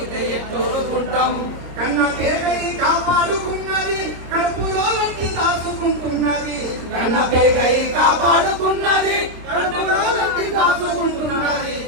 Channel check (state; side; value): late; left; 26 ms